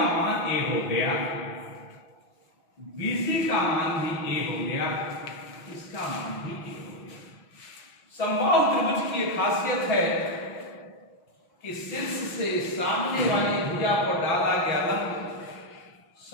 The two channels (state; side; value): late; right; 6.1 ms